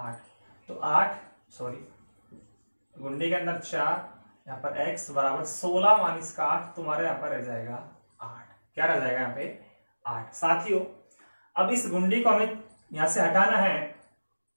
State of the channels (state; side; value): inverted; both; correlation -1.00